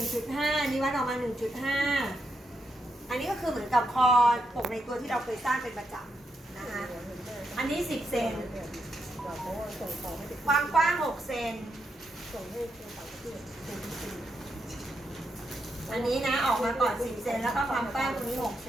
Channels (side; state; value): both; normal; correlation 0.82